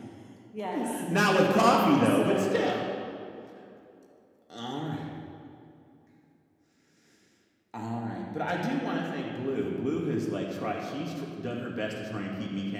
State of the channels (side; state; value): both; identical; correlation 1.00